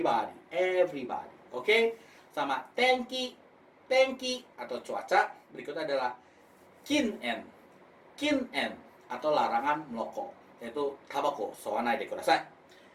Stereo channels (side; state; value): both; identical; correlation 1.00